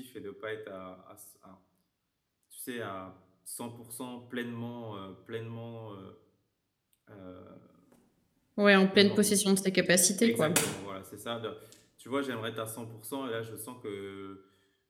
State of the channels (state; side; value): identical; both; correlation 1.00